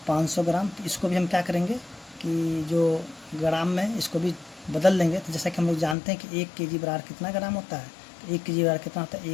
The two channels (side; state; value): right; drops out; at 6.0 s